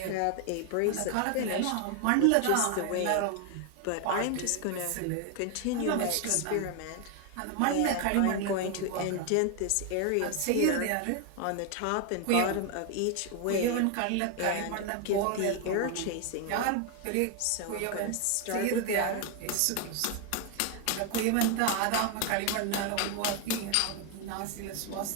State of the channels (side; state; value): both; different; correlation 0.00